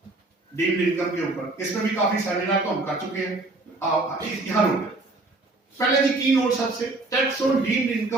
डीम्ड इनकम के ऊपर। इसमें भी काफी सेमिनार तो हम कर चुके हैं। यहां रुक गए। पहले जी की नोट सबसे, tax on deemed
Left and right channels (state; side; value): quieter; left; 3.1 dB